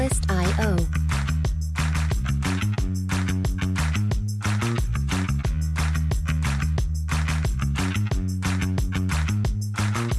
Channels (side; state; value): both; identical; correlation 1.00